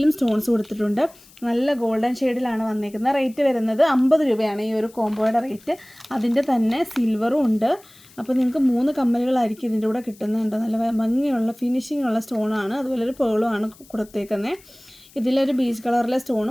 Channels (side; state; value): left; noise; hiss, 25 dB below the sound